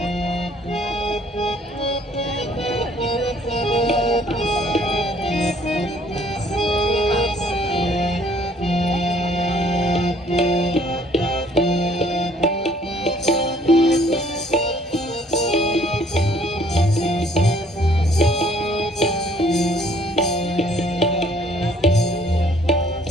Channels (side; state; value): both; normal; correlation 0.60